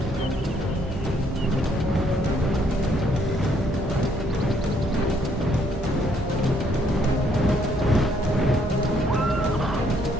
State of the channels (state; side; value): normal; both; correlation 0.68